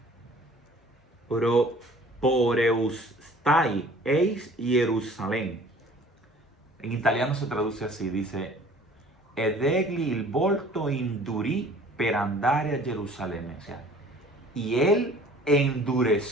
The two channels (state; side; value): normal; both; correlation 0.50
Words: poreustai eis Jerusalén. En italiano se traduce así, dice: ed egli il volto indurì per andare a Jerusalén. O sea, y él